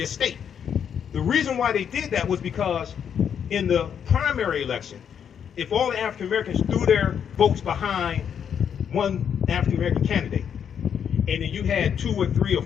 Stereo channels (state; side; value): quieter; right; 8.1 dB